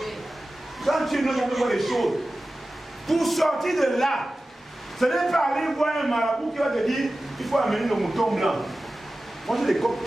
Quand tu es né, on fait boire des choses. Pour sortir de là, ce n'est pas aller voir un marabout qui va te dire il faut amener le mouton blanc. Moi j'ai des coques,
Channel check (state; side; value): normal; both; correlation 0.95